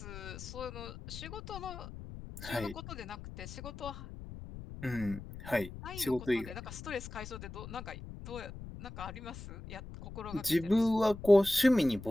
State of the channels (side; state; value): left; noise; rumble, 12 dB below the sound